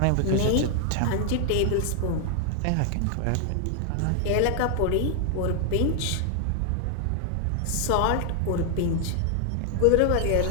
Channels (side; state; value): both; different; correlation 0.00